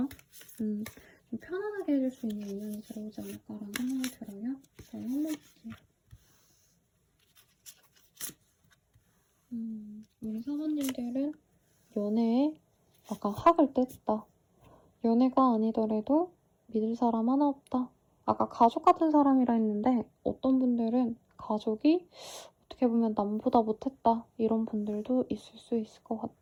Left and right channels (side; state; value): both; identical; correlation 1.00